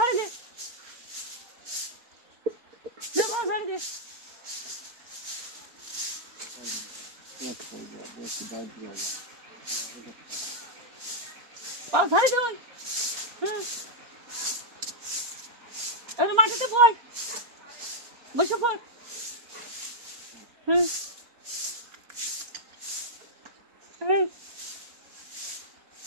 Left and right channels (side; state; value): left; late; 4.2 ms